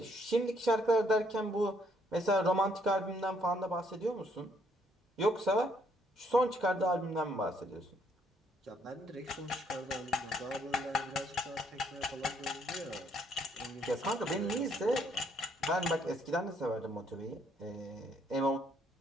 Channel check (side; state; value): both; normal; correlation 0.69